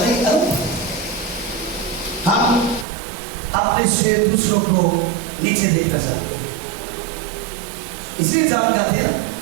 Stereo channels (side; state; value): left; drops out; at 2.9 s